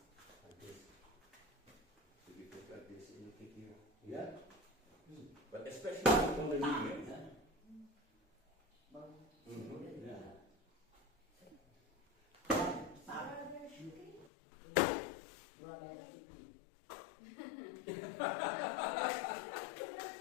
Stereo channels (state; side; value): drops out; right; at 14.3 s